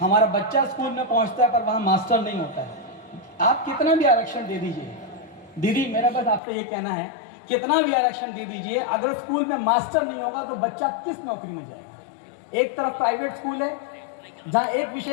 हमारा बच्चा स्कूल में पहुँचता है पर वहाँ मास्टर नहीं होता है। आप कितना भी आरक्षण दे दीजिए, दीदी मेरा बस आपसे ये कहना है, कितना भी आरक्षण दे दीजिए, अगर स्कूल में मास्टर नहीं होगा तो बच्चा किस नौकरी में जाएगा। एक तरफ प्राइवेट स्कूल है जहाँ एक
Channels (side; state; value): right; drops out; at 6.4 s